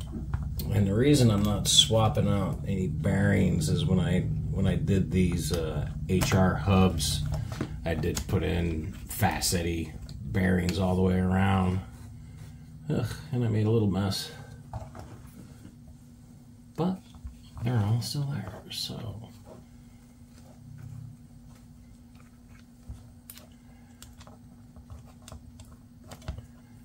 And the reason I'm not swapping out any bearings is when I did these HR hubs, I did put in Facetti bearings all the way around. Ugh, and I made a little mess. But they're all still there, so.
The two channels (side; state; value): both; identical; correlation 1.00